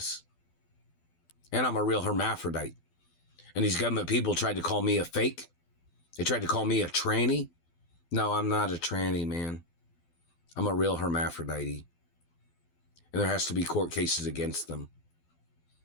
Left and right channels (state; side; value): late; right; 12 ms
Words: And I'm a real hermaphrodite. And these government people tried to call me a fake. They tried to call me a tranny. No, I'm not a tranny, man. I'm a real hermaphrodite. And there has to be court cases against them.